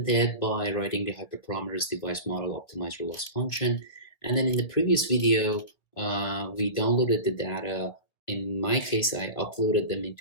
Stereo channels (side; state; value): right; late; 1.8 ms